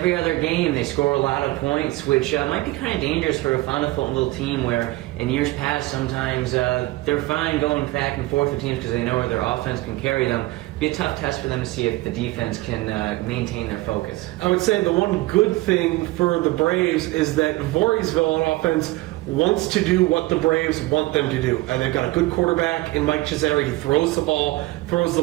other game they score a lot of points, which might be kind of dangerous for a Fonda Fultonville team where in years past sometimes they're fine going back and forth with teams because they know where their offense can carry them. It'd be a tough test for them to see if the defense can maintain their focus. I would say the one good thing for the Braves is that Voorheesville on offense wants to do what the Braves want them to do. And they've got a good quarterback in Mike Cesare. He throws the ball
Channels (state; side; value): quieter; left; 19.8 dB